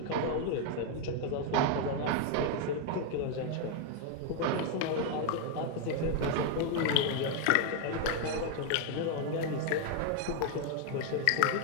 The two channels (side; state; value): both; different; correlation 0.01